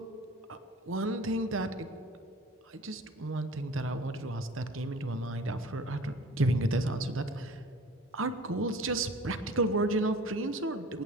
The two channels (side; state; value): both; normal; correlation 0.44